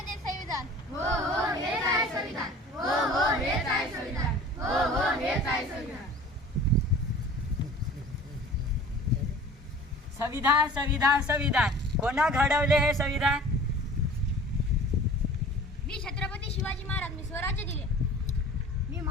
संविधान. हो हो हेच आहे संविधान, हो हो हेच आहे संविधान, हो हो हेच आहे संविधान. संविधान संविधान संविधान कोणा घडवले हे संविधान? मी छत्रपती शिवाजी महाराज, मी स्वराज्य दिले. मी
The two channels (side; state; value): both; normal; correlation 0.44